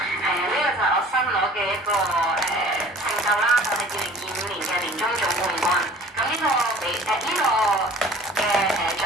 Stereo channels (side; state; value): both; normal; correlation 0.47